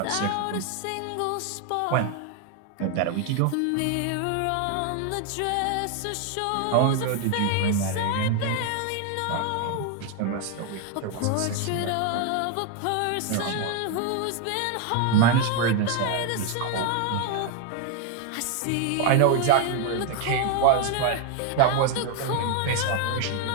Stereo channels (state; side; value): different; both; correlation 0.01